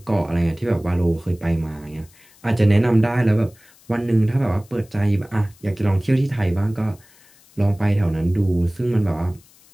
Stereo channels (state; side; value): noise; left; hiss, 28 dB below the sound